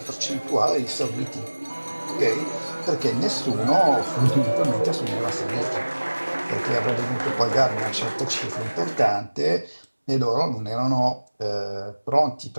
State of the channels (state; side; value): inverted; both; correlation -1.00